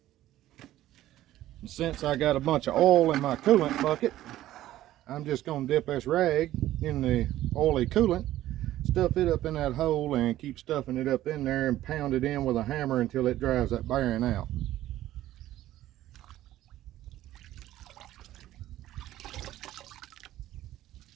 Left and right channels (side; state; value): left; quieter; 14.1 dB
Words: And since I got a bunch of oil in my coolant bucket, I'm just going to dip this rag in the oily coolant, stuff it up in that hole, and keep stuffing it up in there and pound it in with a hammer until it drives that bearing out.